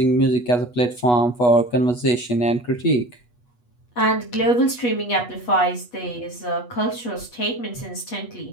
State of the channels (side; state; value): right; late; 8.2 ms